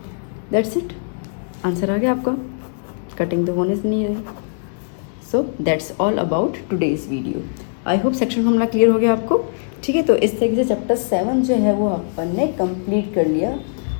दैट्स इट, आंसर आ गया आपका, कटिंग द बोनस नहीं है। So that's all about today's video. I hope section formula clear हो गया आपको। ठीक है, तो इस तरीके से चैप्टर 7 जो है वो अपन ने कंप्लीट कर लिया।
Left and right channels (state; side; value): silent; right; digital silence